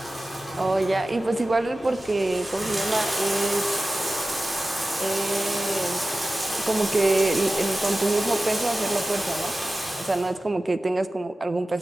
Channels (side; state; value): both; normal; correlation 0.95